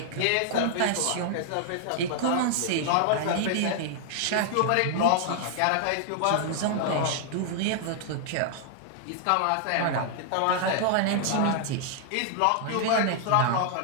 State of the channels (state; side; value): different; both; correlation -0.01